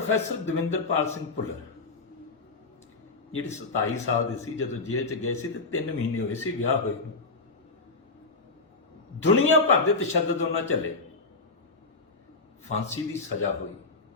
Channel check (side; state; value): right; quieter; 3.7 dB